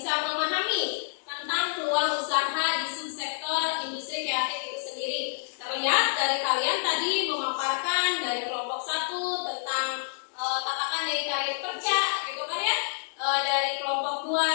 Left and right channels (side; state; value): right; silent; digital silence